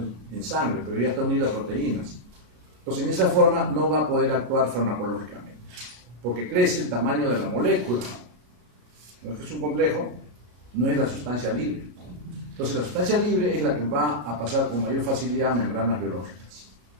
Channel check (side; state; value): left; late; 33 ms